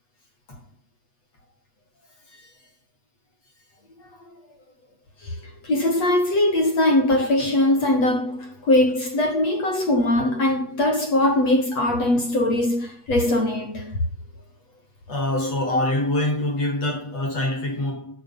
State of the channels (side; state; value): right; late; 8.2 ms